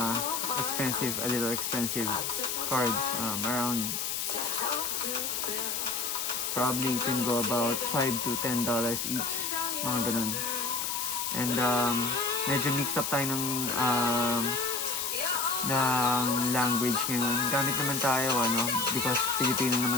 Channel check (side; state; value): left; noise; hiss, 1 dB below the sound